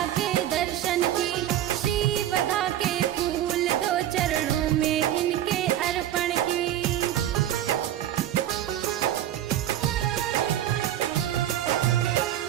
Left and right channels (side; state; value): left; quieter; 12.1 dB